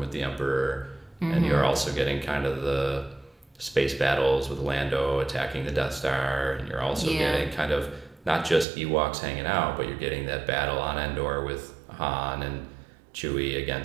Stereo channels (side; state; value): left; drops out; at 8.7 s